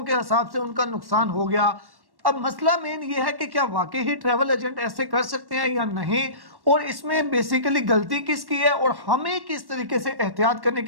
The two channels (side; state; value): left; late; 1.1 ms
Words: के हिसाब से उनका नुकसान हो गया। अब मसला मेन ये है कि क्या वाकई ही ट्रैवल एजेंट ऐसे कर सकते हैं या नहीं, और इसमें बेसिकली गलती किसकी है और हमें किस तरीके से एहतियात करने